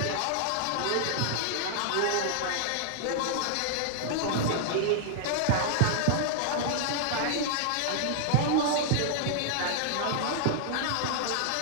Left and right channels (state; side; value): different; both; correlation -0.01